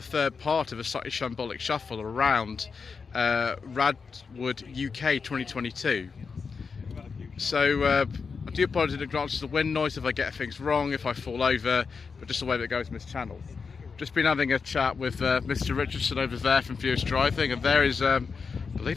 part of a Slightly Shambolic Shuffle around RADwood UK 2022. So, I do apologise in advance for the wind noise if I get things wrong, if I fall over, but just the way that goes in this channel. Just been having a chat with Mr Richardson over there from furiousdriving, and there is, I believe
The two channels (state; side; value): quieter; right; 5.2 dB